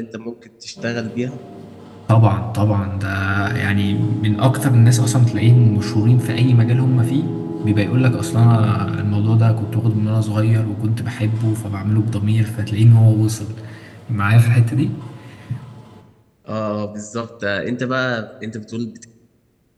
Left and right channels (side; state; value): both; identical; correlation 1.00